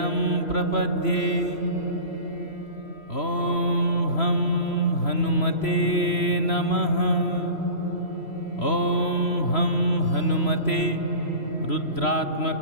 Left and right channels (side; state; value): right; late; 3.0 ms